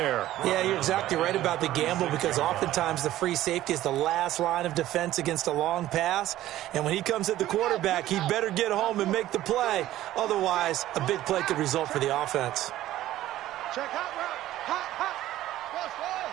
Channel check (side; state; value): left; quieter; 14.3 dB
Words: Yeah, you're exactly right about the gamble because oftentimes the free safety is the last line of defense against a long pass. And when he comes at the quarterback, he better get home and make the play. Otherwise, a big play could result for the offense. Check hot route. Hot.